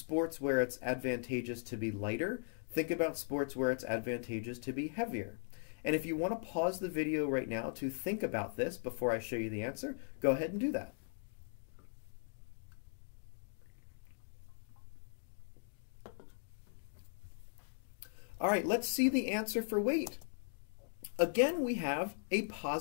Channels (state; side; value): silent; right; digital silence